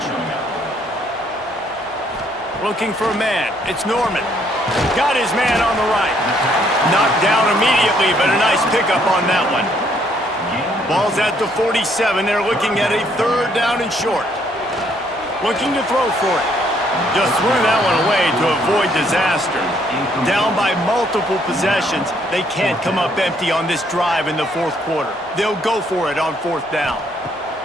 Looking for a man. It's Norman. Got his man on the right. Knocked down immediately, but a nice pickup on that one. Ball's at the 47. They're looking at a 3rd down and short. Looking to throw for it. Just threw that one away to avoid disaster. Down by multiple possessions, they can't come up empty on this drive in the 4th quarter. They'll go for it on 4th down.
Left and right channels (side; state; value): both; normal; correlation 0.68